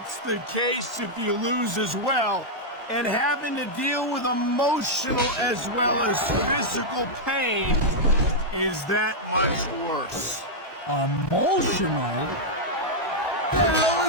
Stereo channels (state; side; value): normal; both; correlation -0.04